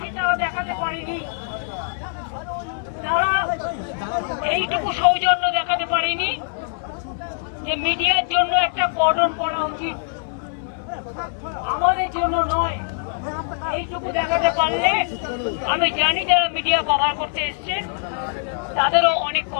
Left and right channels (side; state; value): right; silent; 64 dB below the other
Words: তারা দেখাতে পারেনি, তারা এইটুকু সৌজন্য দেখাতে পারেনি যে মিডিয়ার জন্য একটা কর্ডন করা উচিত, আমাদের জন্য নয়। এইটুকু দেখাতে পারলে আমি জানি যারা মিডিয়া কভার করতে এসছেন তাদেরও অনেক